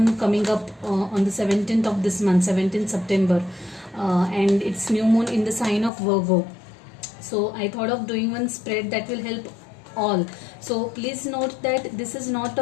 coming up on the 17th of this month, 17th September, and it's new moon in the sign of Virgo. So I thought of doing one spread that will help all. So please note that this is not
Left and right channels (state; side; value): drops out; right; at 5.9 s